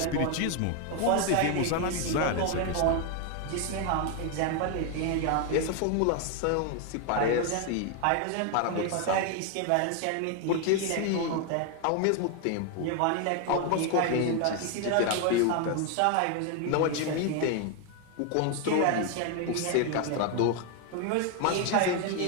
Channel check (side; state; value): both; different; correlation 0.01